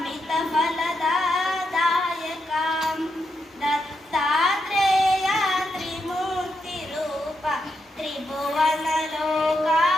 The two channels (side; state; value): both; normal; correlation 0.83